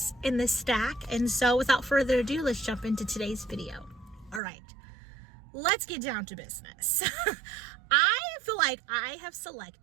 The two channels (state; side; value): drops out; left; at 4.4 s